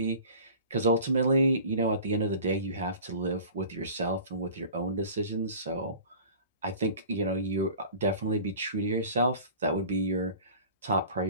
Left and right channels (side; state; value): both; inverted; correlation -0.43